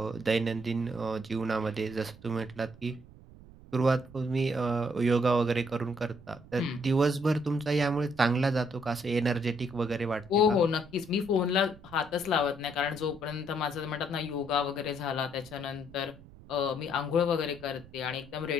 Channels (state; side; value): noise; right; rumble, 21 dB below the sound